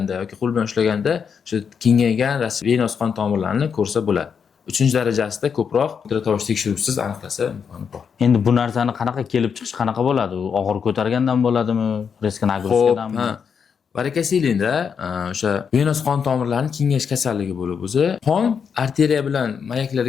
yoki qo'l bilan ushlaganda o'sha kengaygan venöz qon tomirlarini ko'rsa bo'ladi. 3-darajasida ko'proq ultratovush tekshiruvsiz aniqlasa imkoni bor. Endi bu narsani qanaqa kelib chiqish qanaqa bo'ladi? U og'ir ko'targandan bo'ladimi? Risk nagruzkadanmi? Varakasiylikda o'sha venöz qon tomirlarining kengayish kasalligi bo'lib o'zi qon arteriya bilan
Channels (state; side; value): quieter; right; 6.7 dB